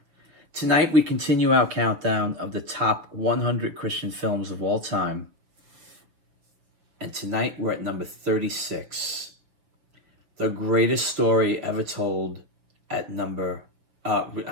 Tonight, we continue our countdown of the top 100 Christian films of all time. And tonight, we're at number 36. The greatest story ever told at we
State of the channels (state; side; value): late; left; 6.2 ms